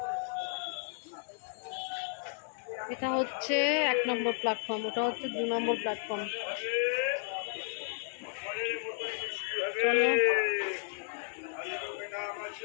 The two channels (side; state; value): right; silent; 56 dB below the other